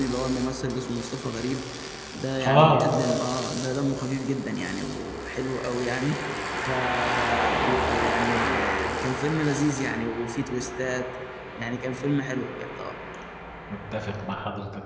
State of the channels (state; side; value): identical; both; correlation 1.00